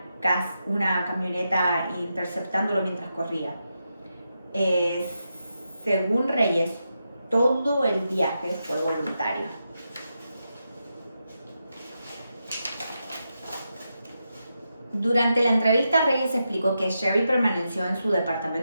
camioneta interceptándolo mientras corría. Según Reyes, todo el viaje fue voluntario. Durante la entrevista, Reyes explicó que Sherry permaneció en su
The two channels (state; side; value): inverted; both; correlation -0.86